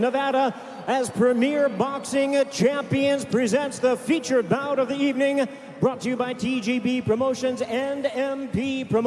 as Premier Boxing Champions presents the featured bout of the evening, brought to you by TGB Promotions and MP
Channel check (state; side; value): identical; both; correlation 1.00